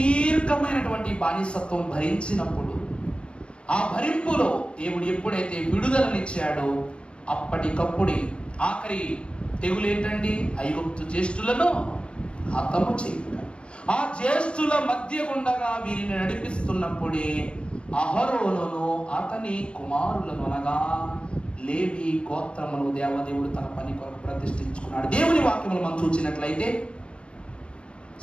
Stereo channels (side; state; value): right; late; 0.056 ms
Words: బానిసత్వం భరించినప్పుడు, ఆ భరింపులో దేవుడు ఎప్పుడైతే విడుదలనిచ్చాడో అప్పటికప్పుడే ఆఖరి తెగులు ఏంటండి? ఐగుప్తు జ్యేష్ఠులను హతము చేయుట. ఆ జ్యేష్ఠుల మధ్య గుండగా వీరిని నడిపిస్తున్నప్పుడే అహరోనును అతని కుమారులను అనగా లేవి గోత్రమును దేవదేవుడు తన పని కొరకు ప్రతిష్ఠించుకున్నాడు. దేవుని వాక్యములు మనం చూసినట్లయితే